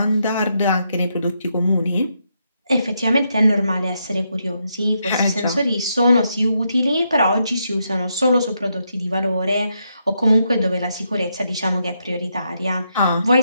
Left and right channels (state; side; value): inverted; both; correlation -0.80